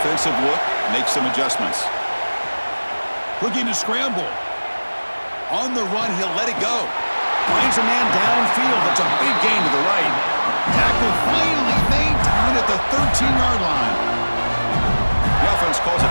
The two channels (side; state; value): both; inverted; correlation -1.00